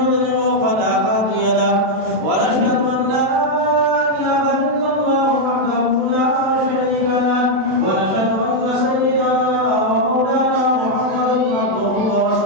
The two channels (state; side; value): late; left; 32 ms